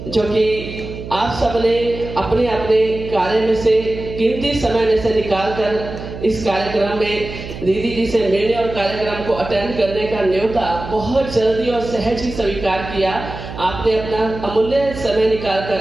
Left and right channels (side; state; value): right; noise; hum, 10 dB below the sound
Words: जो कि आप सबने अपने अपने कार्य में से कीमती समय में से निकाल कर इस कार्यक्रम में दीदी जी से मिलने और कार्यक्रम को अटेंड करने का न्योता बहुत जल्दी और सहज ही स्वीकार किया। आपने अपना अमूल्य समय निकाल